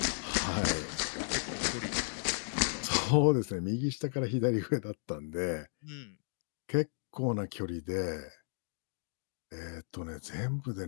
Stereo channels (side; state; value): right; silent; digital silence